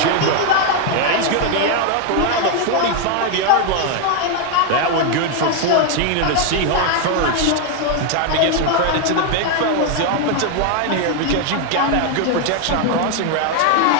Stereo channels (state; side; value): different; both; correlation 0.01